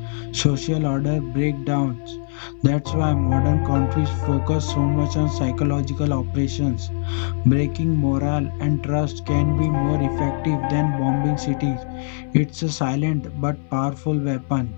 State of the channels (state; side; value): silent; right; digital silence